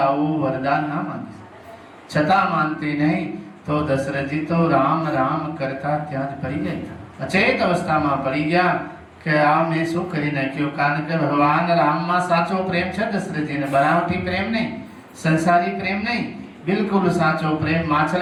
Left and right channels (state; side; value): identical; both; correlation 1.00